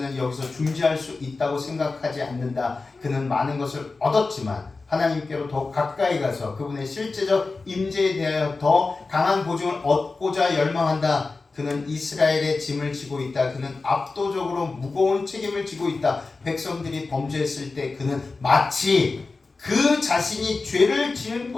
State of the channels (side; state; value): right; quieter; 3.9 dB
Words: 여기서 중지할 수 있다고 생각하지 않는다. 그는 많은 것을 얻었지만 하나님께로 더 가까이 가서 그분의 실제적 임재에 대하여 더 강한 보증을 얻고자 열망한다. 그는 이스라엘의 짐을 지고 있다. 그는 압도적으로 무거운 책임을 지고 있다. 백성들이 범죄했을 때 그는 마치 그 자신이 죄를 지은